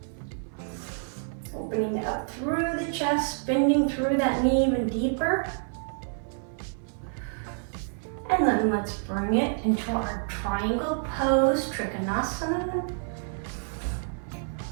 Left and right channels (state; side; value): silent; left; 59 dB below the other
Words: Opening up through the chest, bending through that knee even deeper. And then let's bring it into our triangle pose, Trikonasana.